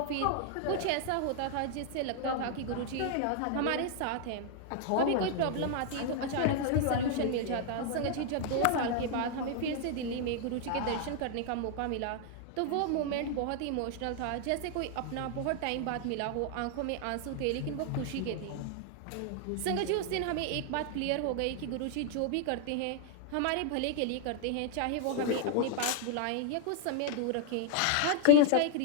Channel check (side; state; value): both; different; correlation 0.00